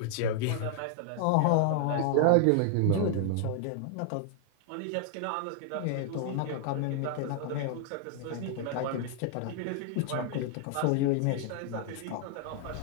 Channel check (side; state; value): both; different; correlation 0.00